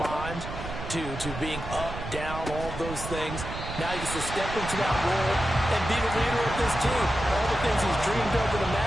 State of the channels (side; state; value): right; noise; rumble, 8 dB below the sound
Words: to being up, down, all those things. Now he gets to step into that role and be the leader of this team. All the things he's dreamed of and